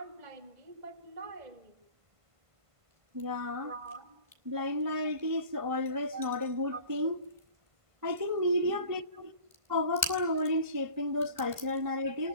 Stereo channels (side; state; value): left; late; 1.5 ms